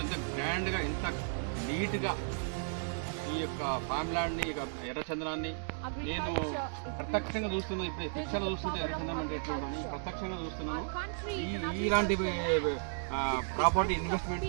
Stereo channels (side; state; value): left; silent; digital silence